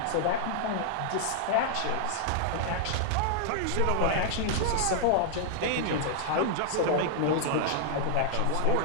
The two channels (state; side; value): different; both; correlation 0.00